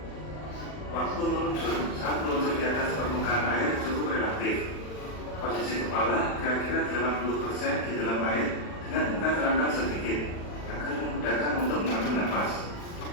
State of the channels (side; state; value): right; late; 40 ms